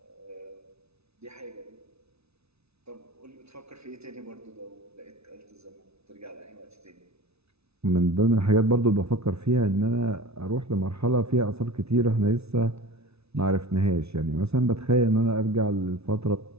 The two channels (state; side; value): late; left; 0.80 ms